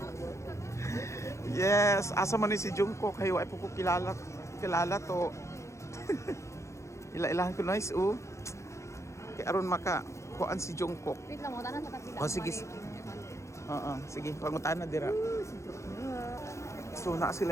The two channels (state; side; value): late; right; 0.14 ms